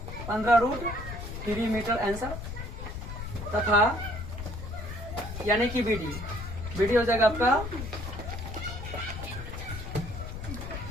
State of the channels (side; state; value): left; noise; rumble, 8 dB below the sound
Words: 15√3 मीटर आंसर, तथा यानी कि BD हो जाएगा आपका